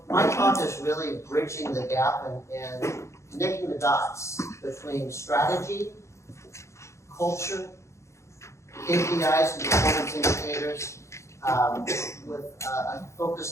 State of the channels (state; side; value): late; right; 0.14 ms